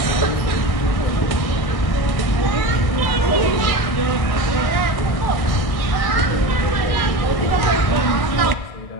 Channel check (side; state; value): right; late; 1.6 ms